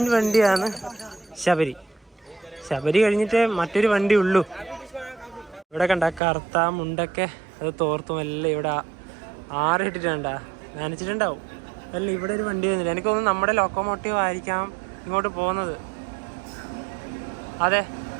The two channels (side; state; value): left; drops out; at 6.2 s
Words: വണ്ടിയാണ് ശബരി. ശബരി കഴിഞ്ഞിട്ട് മറ്റൊരു വണ്ടി ഉള്ളൂ. ഇവിടെ കണ്ട കറുത്ത മുണ്ടൊക്കെ അത് തോർത്തും എല്ലാം ഇവിടെ ആറിട്ടിട്ടുണ്ടാ, നനച്ചിട്ടുണ്ടാവും. അല്ല, ഇവിടെ ഒരു വണ്ടി വരുന്നില്ല. എനിക്ക് തോന്നുന്നു നമ്മുടെ ലോക്കോമോട്ടീവ് ആയിരിക്കാം ഇങ്ങോട്ട് പോകുന്നത്. അതെ,